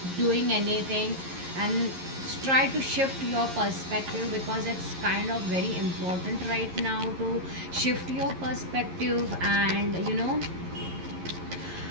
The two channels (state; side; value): late; left; 11 ms